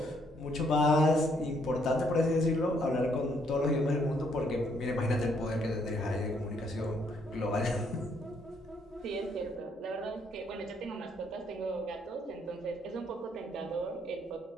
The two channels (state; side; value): normal; both; correlation 0.70